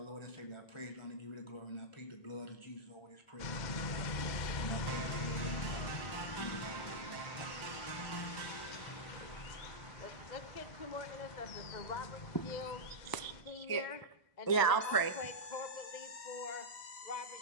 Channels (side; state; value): right; late; 1.0 ms